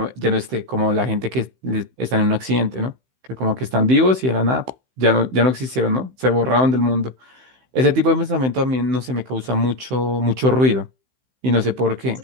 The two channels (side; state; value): left; late; 16 ms